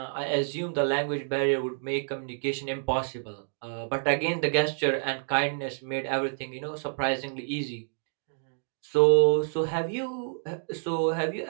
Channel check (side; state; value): left; silent; digital silence